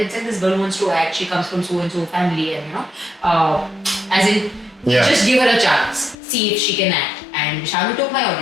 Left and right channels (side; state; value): right; drops out; at 6.2 s